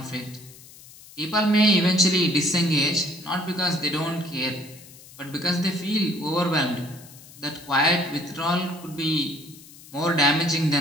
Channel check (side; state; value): left; noise; hiss, 20 dB below the sound